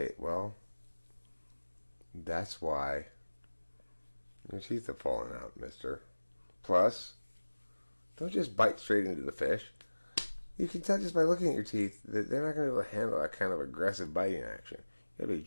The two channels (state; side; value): inverted; both; correlation -1.00